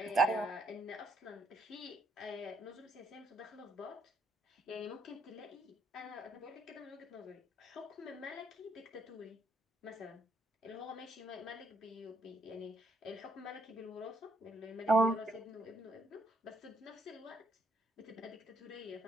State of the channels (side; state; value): both; normal; correlation 0.71